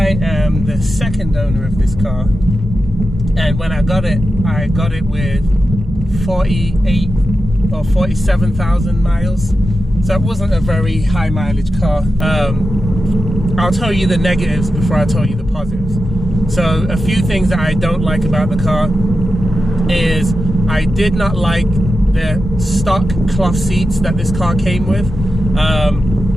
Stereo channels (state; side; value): normal; both; correlation 0.91